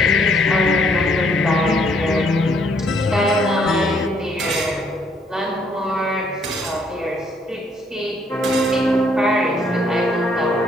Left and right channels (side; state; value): both; normal; correlation 0.68